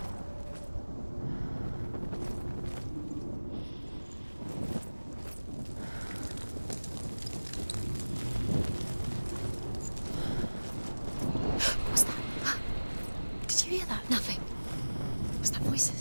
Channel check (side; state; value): both; inverted; correlation -1.00